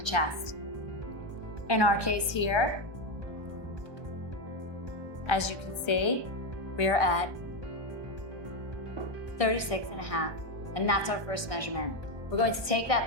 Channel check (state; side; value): late; left; 1.2 ms